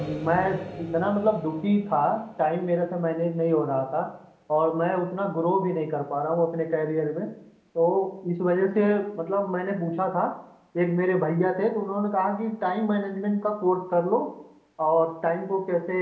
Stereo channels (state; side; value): identical; both; correlation 1.00